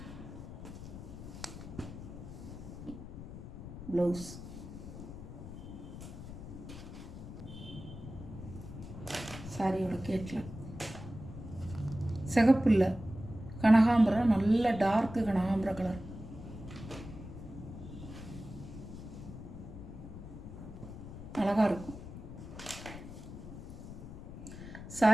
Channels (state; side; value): noise; left; rumble, 11 dB below the sound